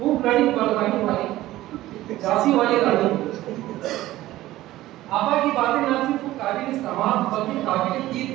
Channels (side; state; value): left; quieter; 15.9 dB